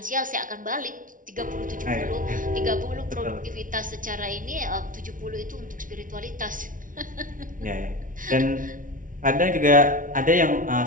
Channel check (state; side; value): late; left; 0.38 ms